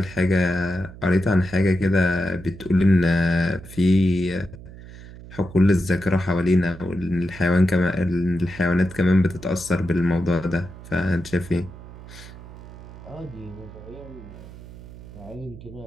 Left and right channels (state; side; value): noise; right; hum, 16 dB below the sound